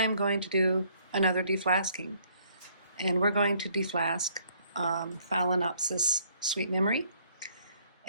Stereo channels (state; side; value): inverted; both; correlation -0.64